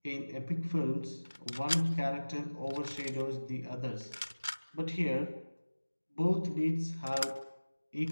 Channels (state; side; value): inverted; both; correlation -1.00